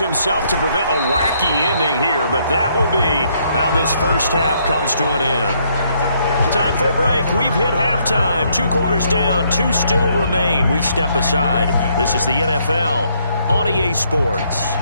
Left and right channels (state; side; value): inverted; both; correlation -0.70